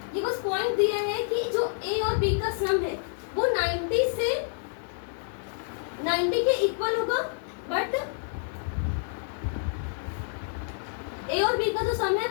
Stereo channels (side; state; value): right; silent; digital silence